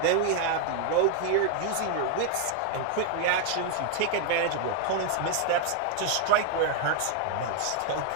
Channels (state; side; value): different; both; correlation 0.00